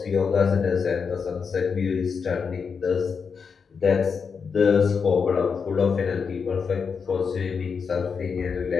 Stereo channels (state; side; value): quieter; right; 5.8 dB